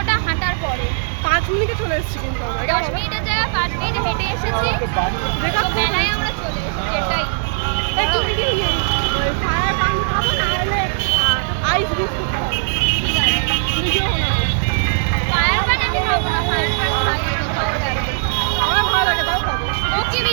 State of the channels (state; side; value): silent; left; digital silence